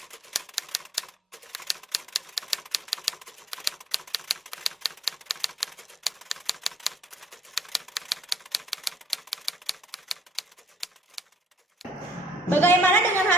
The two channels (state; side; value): normal; both; correlation 0.63